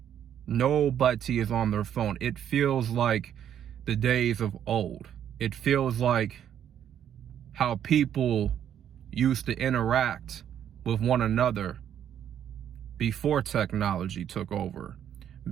Nobody is on their phone. It feels like the days of old. It feels like how people used to interact with one another before technology took over,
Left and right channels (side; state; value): left; quieter; 9.7 dB